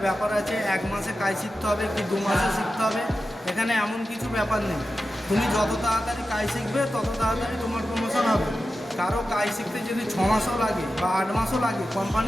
ব্যাপার আছে 1 মাসে কাজ শিখতে হবে কি 2 মাসে শিখতে হবে। এখানে এমন কিছু ব্যাপার নেই। তুমি যত তাড়াতাড়ি কাজ শিখবে তত তাড়াতাড়ি তোমার প্রমোশন হবে। কারো কাজ শিখতে যদি 6 মাসও লাগে বা 8 মাসও লাগে,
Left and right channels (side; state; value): both; normal; correlation 0.92